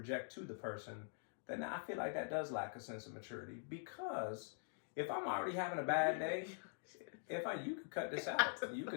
to the person, then I feel like that does lack a sense of maturity, because if I'm already having a bad day, you could cut this out. You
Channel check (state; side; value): silent; right; digital silence